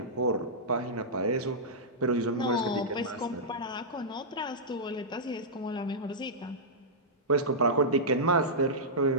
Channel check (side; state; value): both; normal; correlation -0.11